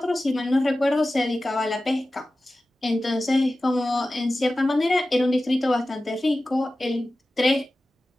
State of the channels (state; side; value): normal; both; correlation 0.95